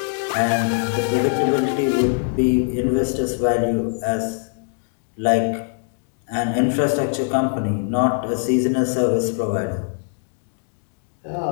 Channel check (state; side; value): silent; right; digital silence